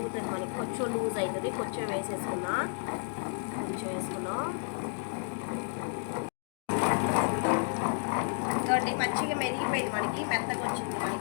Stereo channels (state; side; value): silent; right; digital silence